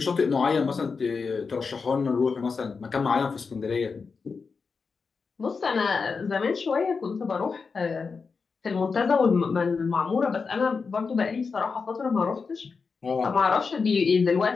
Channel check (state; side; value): quieter; right; 5.0 dB